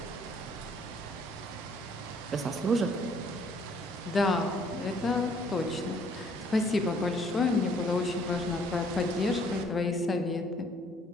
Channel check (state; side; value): normal; both; correlation 0.62